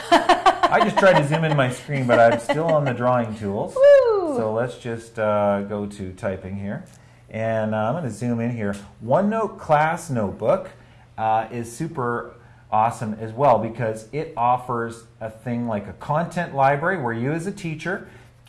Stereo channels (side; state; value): both; identical; correlation 1.00